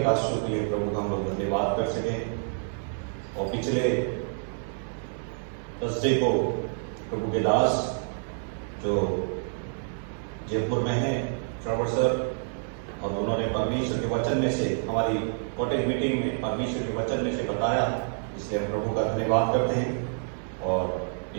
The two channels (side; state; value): left; silent; digital silence